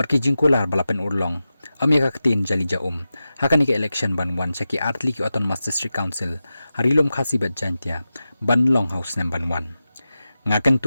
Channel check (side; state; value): both; inverted; correlation -0.93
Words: jingkular balapen urlong amya ka katin jali jaum hakani ka election ban wan saki artli ki autonomous district council harilom khasi bat jantia ban long house nam ban wan ngakan